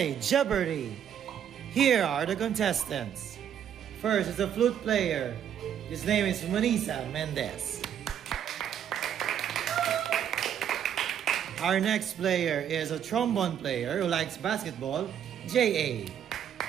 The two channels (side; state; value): left; quieter; 9.3 dB